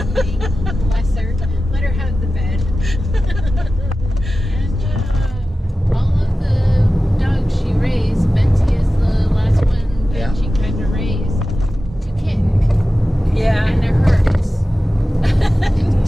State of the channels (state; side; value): normal; both; correlation 0.94